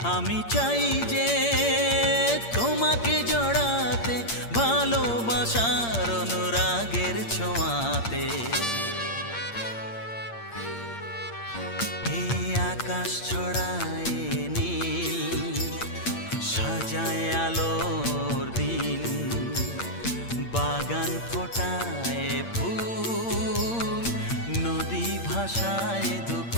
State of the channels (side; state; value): right; late; 8.7 ms